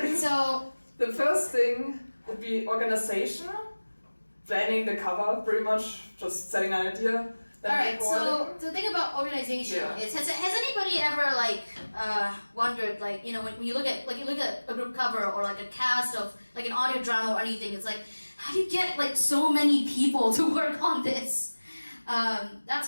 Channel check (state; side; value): inverted; both; correlation -1.00